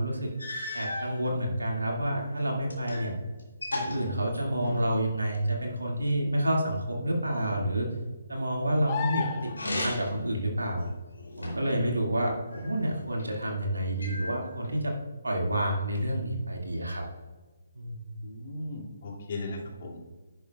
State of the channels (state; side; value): inverted; both; correlation -0.81